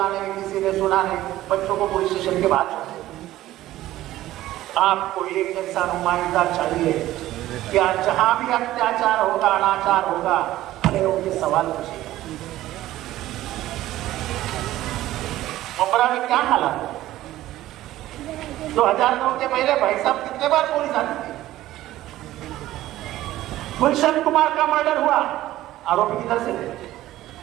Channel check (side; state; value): left; quieter; 15.0 dB